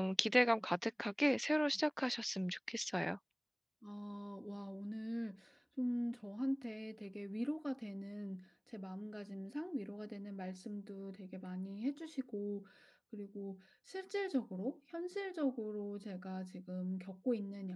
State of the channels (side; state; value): both; identical; correlation 1.00